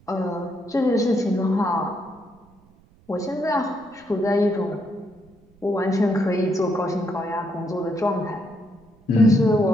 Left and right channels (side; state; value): right; noise; rumble, 30 dB below the sound